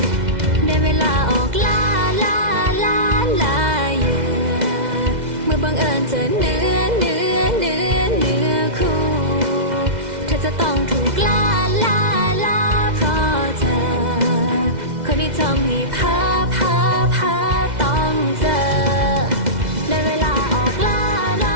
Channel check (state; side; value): late; left; 2.0 ms